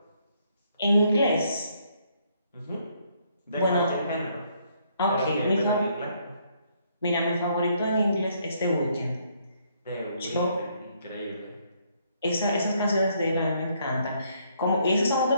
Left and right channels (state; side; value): inverted; both; correlation -0.70